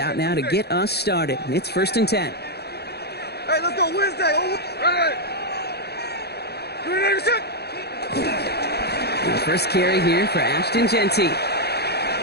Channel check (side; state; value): right; late; 0.47 ms